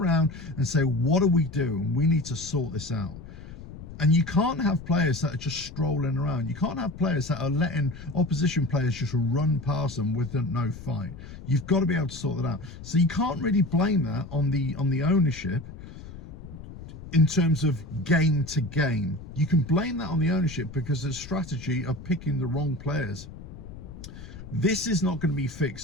and say, what do we do? And we need to sort this out. And you can't have players that are just strolling around. You can't have players that are letting opposition players just run past them with no fight. You've got to be able to sort that out. So you can't really blame that on the ownership in terms of game to game. You can blame that on the ownership because the strategy of picking the wrong players. This is not going to be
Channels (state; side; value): noise; left; rumble, 14 dB below the sound